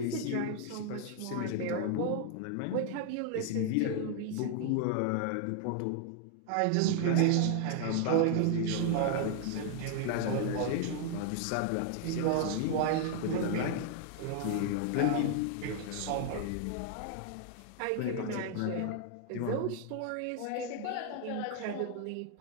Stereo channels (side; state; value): both; different; correlation 0.00